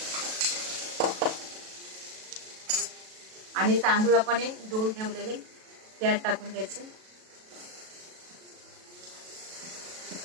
आणि तांदूळ आपण धुवून ठेवलेले त्यात टाकून द्यायचे.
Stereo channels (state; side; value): late; left; 37 ms